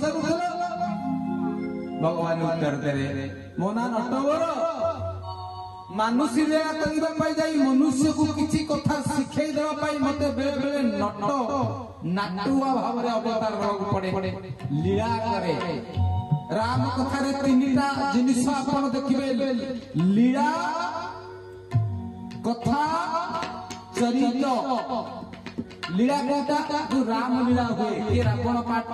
भगवान उत्तर देरे मोना नटवर मानुषी लीला करबा पाई जाई मनुष्य को किछि कथा शिखै देबा पाई मते बेले बेले नट नाटुआ भाव रे अवतार रहू पड़े लीला करे राम कथा रे तीनटा जिनिस आपण देखिबे लीला कथा चरित्र लीला कोटा जो राम लीला हुए के रावण पाठ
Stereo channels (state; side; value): identical; both; correlation 1.00